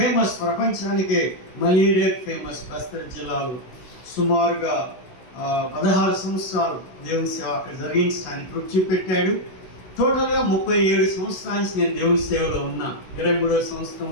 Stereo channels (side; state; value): right; late; 16 ms